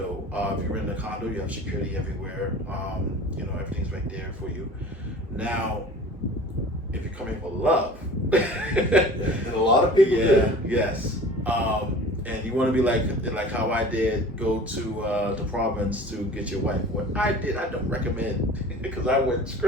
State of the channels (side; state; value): both; normal; correlation 0.42